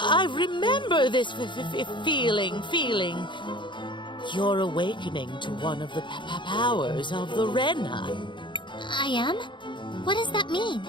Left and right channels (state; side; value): late; right; 0.23 ms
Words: remember this feeling. You're awakening to one of the powers of the Rena. I am? What does that mean?